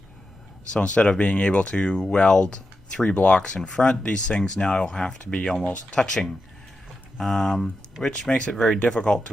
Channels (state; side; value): normal; both; correlation 0.89